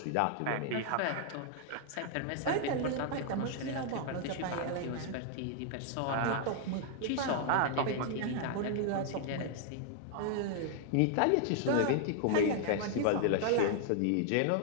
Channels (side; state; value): both; different; correlation 0.00